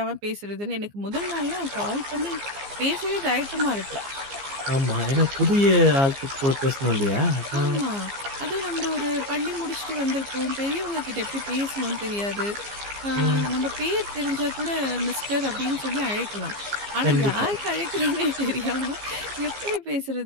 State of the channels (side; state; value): left; late; 15 ms